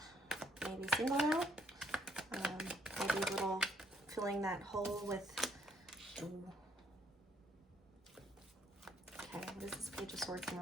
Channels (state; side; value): normal; both; correlation 0.69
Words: Maybe single now. Maybe a little filling that hole with... Ooh. Okay, what is this Page of Swords in